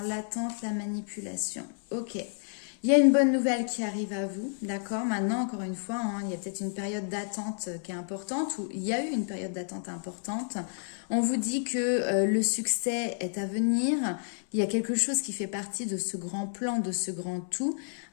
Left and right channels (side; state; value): right; silent; 58 dB below the other